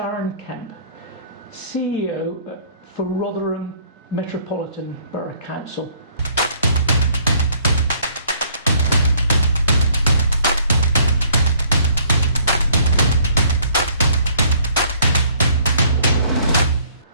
Kemp, CEO for Rotherham Metropolitan Borough Council.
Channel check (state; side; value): inverted; both; correlation -0.60